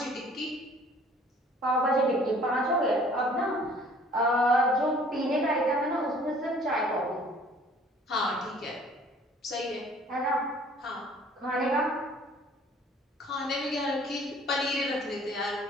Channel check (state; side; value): normal; both; correlation 0.54